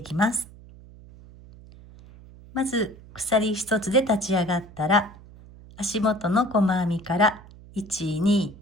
きます。まず鎖1つで立ち上がったら、足元の細編みから1、2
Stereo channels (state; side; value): noise; right; hum, 20 dB below the sound